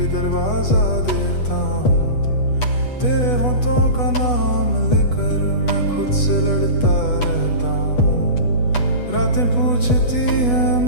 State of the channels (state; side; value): late; right; 8.2 ms